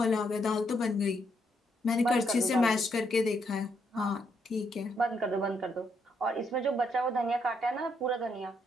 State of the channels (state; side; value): normal; both; correlation 0.76